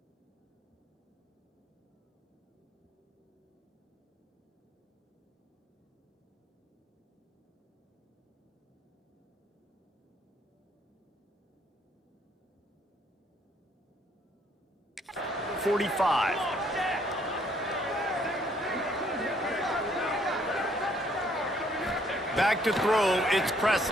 Back to throw, it's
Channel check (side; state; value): both; normal; correlation 0.66